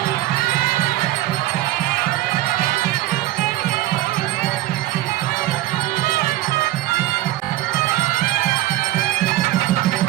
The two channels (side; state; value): left; quieter; 15.7 dB